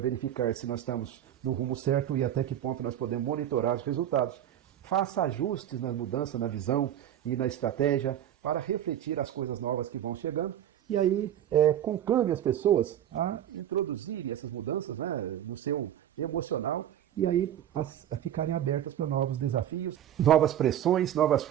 se nós estamos no rumo certo e até que ponto nós podemos monitorar os resultados. Faça ajustes na mudança, na visão e na estratégia para refletir as coisas novas que vão chegando. E aí, conclame as pessoas a introduzirem essas mudanças, né, no seu emocional, e aí a ficarem abertas para novos desafios, novas pressões, novas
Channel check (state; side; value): quieter; left; 11.0 dB